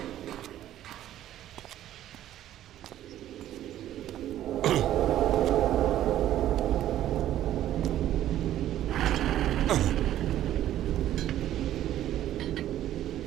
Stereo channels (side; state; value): left; quieter; 12.5 dB